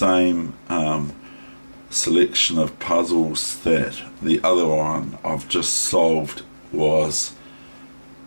selection of puzzles that the other one I've just solved was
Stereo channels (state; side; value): inverted; both; correlation -1.00